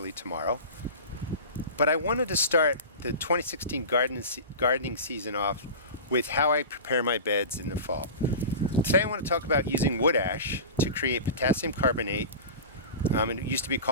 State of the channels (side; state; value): both; inverted; correlation -0.31